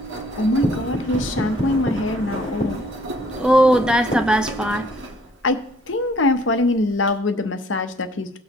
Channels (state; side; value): normal; both; correlation 0.60